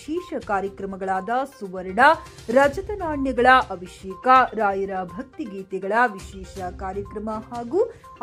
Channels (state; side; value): identical; both; correlation 1.00